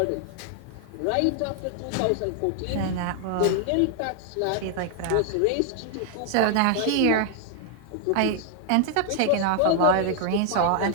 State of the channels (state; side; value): different; both; correlation 0.00